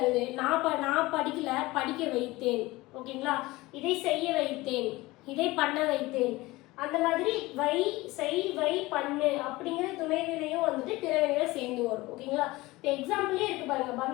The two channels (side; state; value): right; quieter; 20.2 dB